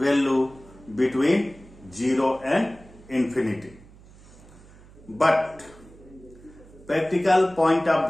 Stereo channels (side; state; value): right; noise; hum, 23 dB below the sound